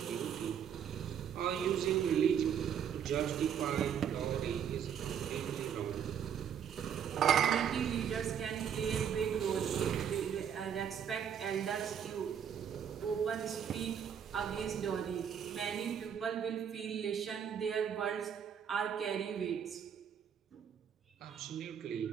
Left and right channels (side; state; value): left; quieter; 8.3 dB